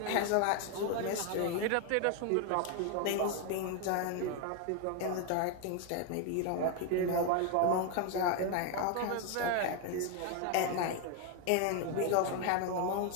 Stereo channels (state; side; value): different; both; correlation 0.01